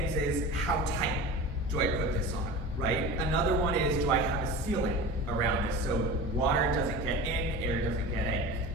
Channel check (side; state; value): both; normal; correlation 0.32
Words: is, how tight do I put this on, right? Another one is, do I have a sealant around this so water doesn't get in, air doesn't